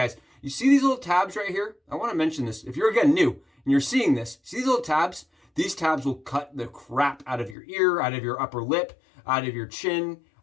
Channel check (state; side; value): drops out; right; at 7.6 s